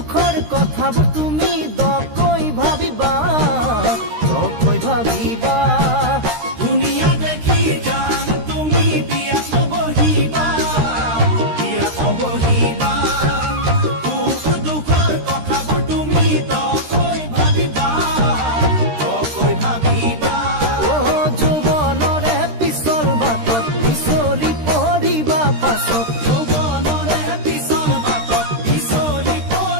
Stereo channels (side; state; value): left; late; 13 ms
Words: কথাবোৰ তুমি দকৈ ভাবিবা দুনিয়া দেখি জান তুমি বিয়াত বহিবা সুখ দুখৰ কথাবোৰ তুমি দকৈ ভাবিবা অ যৌৱনৰে পিছল বাটত পিছলি পৰিবা পাছত